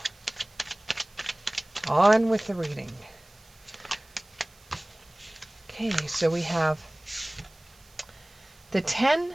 On with the reading. Okay, so we have the 10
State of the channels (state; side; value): noise; right; hiss, 27 dB below the sound